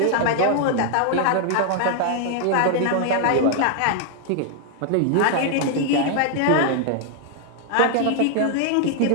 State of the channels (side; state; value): both; different; correlation 0.00